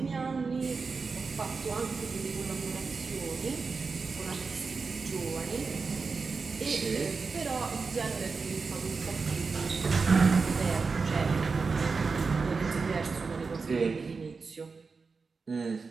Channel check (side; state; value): left; quieter; 4.6 dB